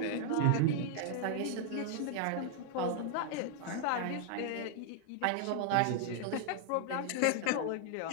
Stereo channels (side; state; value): both; different; correlation 0.00